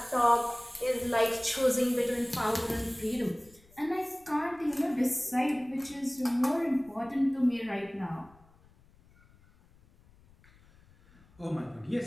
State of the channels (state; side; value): noise; left; rumble, 28 dB below the sound